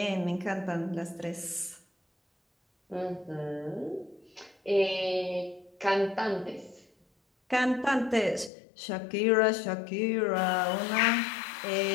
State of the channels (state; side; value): drops out; right; at 8.5 s